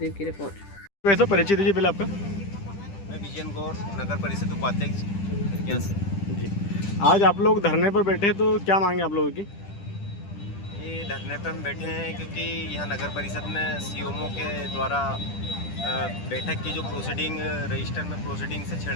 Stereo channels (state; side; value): late; right; 10 ms